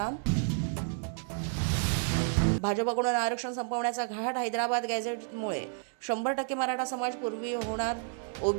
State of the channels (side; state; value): left; silent; 57 dB below the other